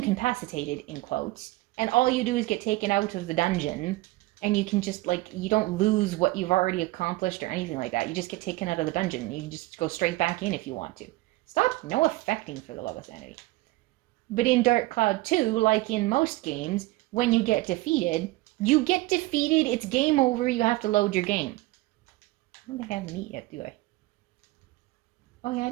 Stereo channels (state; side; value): quieter; left; 19.5 dB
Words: in quotes, and all you do is get taken out of the dungeon, and you can just, like, you don't lose what you've already accomplished or anything like that. You just get taken out of the dungeon. You can just go straight back in if you want to. Stop no affecting, for the love of sanity. But in Dark Cloud 2, like in most games, when you get defeated, it's game over, you have to load your game. I don't think I have meat yet, do I? Oh yeah, I